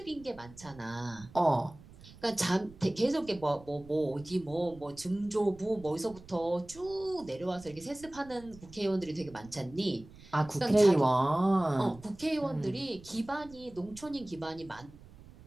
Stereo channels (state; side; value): noise; right; rumble, 21 dB below the sound